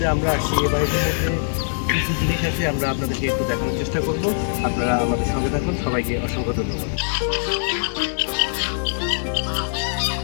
আমরা আসছি এই বাড়িটির মধ্যে কিছু জিনিস আছে, আমরা আপনাদেরকে একটু দেখানোর চেষ্টা করব। আপনারা আমাদের সঙ্গে থাকুন। সবাইকে অসংখ্য ধন্যবাদ।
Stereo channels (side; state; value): right; silent; 57 dB below the other